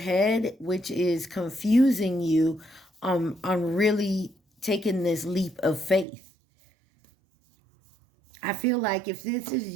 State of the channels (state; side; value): drops out; left; at 6.1 s